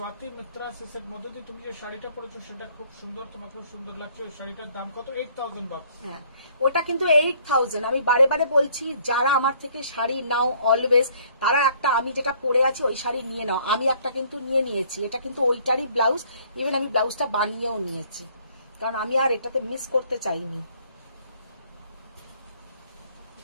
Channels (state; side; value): inverted; both; correlation -0.61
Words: মিত্রা সে মধুদি তুমি যে শাড়িটা পরেছো সেটা খুব সুন্দর, তোমাকে খুব সুন্দর লাগছে। ওই শাড়িটার দাম কত? 8,000 bucks। হ্যাঁ ওটা কিন্তু 8,000। আমি বারে বারে বলছি, যারা আমার থেকে শাড়ি নাও অলওয়েজ, তারা একটা আমি যেটা পরে আছি ওই শাড়ি নিয়ে নাও। আমি একটা কিন্তু নিয়ে নিয়েছি, এটা কিন্তু ওইটারই ব্লাউজ, ইভেন আমি ব্লাউজটা বানিয়েও নিয়েছি, কারণ আমি আর এটাতে মিস করতে চাইনি।